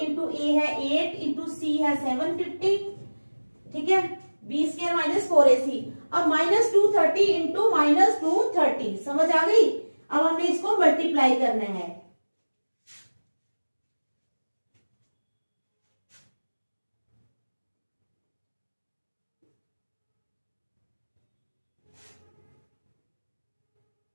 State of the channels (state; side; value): inverted; both; correlation -1.00